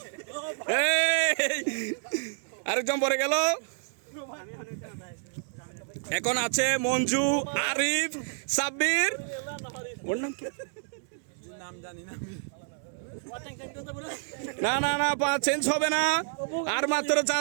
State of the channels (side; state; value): left; silent; digital silence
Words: আরেকজন পড়ে গেল। এখন আছে মঞ্জু, আরিফ, সাব্বির। ওর নাম কি? না না না, চেঞ্জ হবে না। আর মাত্র